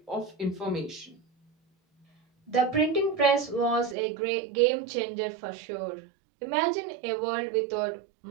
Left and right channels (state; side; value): drops out; left; at 4.0 s